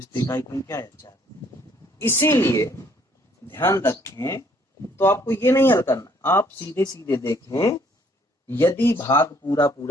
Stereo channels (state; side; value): normal; both; correlation 0.64